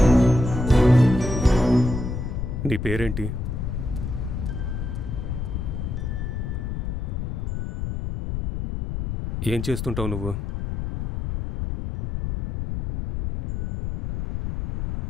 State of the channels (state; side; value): noise; left; rumble, 4 dB below the sound